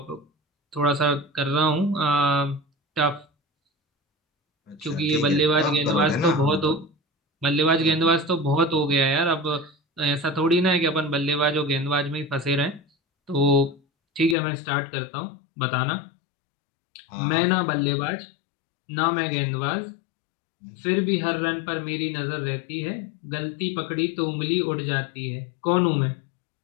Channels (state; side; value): drops out; right; at 14.4 s